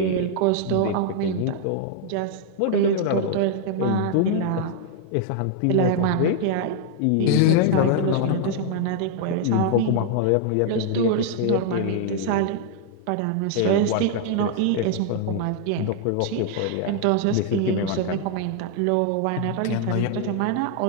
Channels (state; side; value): different; both; correlation 0.00